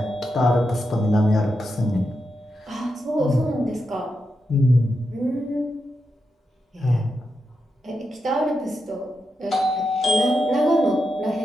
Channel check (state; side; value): normal; both; correlation 0.86